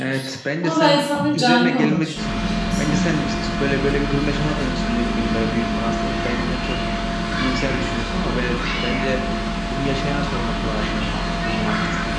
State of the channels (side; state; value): both; identical; correlation 1.00